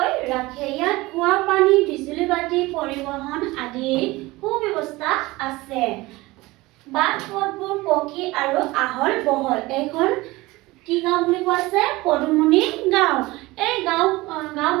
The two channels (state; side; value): quieter; left; 20.6 dB